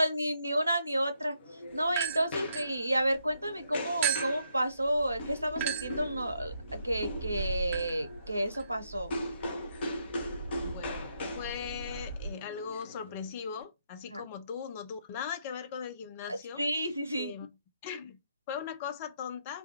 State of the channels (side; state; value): both; inverted; correlation -0.76